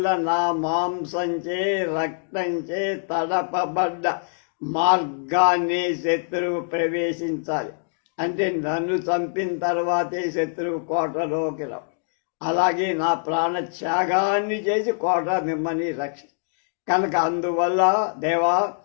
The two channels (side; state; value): right; silent; digital silence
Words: నా మాంసంచే రక్తంచే తడపబడ్డ మార్గాన్ని శత్రువు ప్రవేశించాలి. అంటే నన్ను చంపిన తర్వాతే శత్రువు కోటలోకి రావు. అలాగే నా ప్రాణత్యాగాన్ని చేసి కోట మిమ్మల్ని కనుక అందువల్ల దేవా,